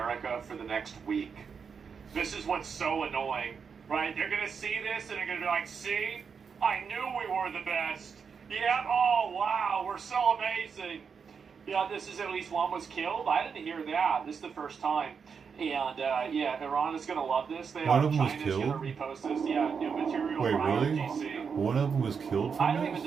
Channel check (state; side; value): quieter; left; 6.1 dB